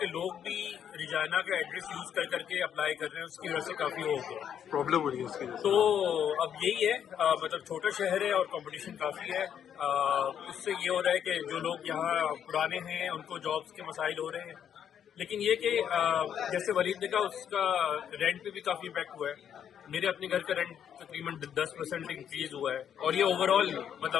लोग भी रिजाइना का एड्रेस यूज कर करके अप्लाई कर रहे हैं, उसकी वजह से काफी हो गया, प्रॉब्लम हो रही है उसकी। तो अब यही है, मतलब छोटा शहर है और कंपटीशन काफी है। उससे ये हो रहा है कि जो लोग यहाँ पुराने हैं उनको जॉब्स के मसाइल हो रहे हैं। लेकिन ये कि जैसे वलीद ने कहा, उसका रेंट पे भी काफी इम्पैक्ट हुआ है। मेरे अपने घर का रेंट तकरीबन 10% इंक्रीज हुआ है, और ये ओवरऑल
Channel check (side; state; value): right; quieter; 8.9 dB